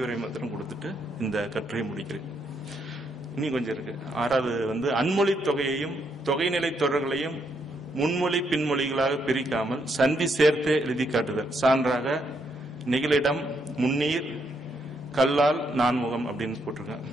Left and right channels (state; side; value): normal; both; correlation 0.76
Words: மாத்திரம் கொடுத்துட்டு இந்த கட்டுரையை முடிக்கிறேன். இனி கொஞ்சம் இருக்கு. 6வது வந்து அன்மொழி தொகையையும் தொகைநிலை தொடர்களையும் முன்மொழி பின்மொழிகளாக பிரிக்காமல் சந்தி சேர்த்தே எழுதி காட்டுதல். சான்றாக நெகிழிடம், முன்னீர், கல்லால், நான்முகம் அப்படின்னு போட்டிருக்கேன்.